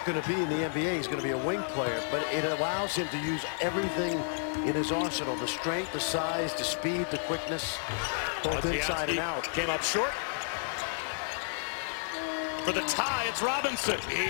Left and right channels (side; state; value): right; silent; digital silence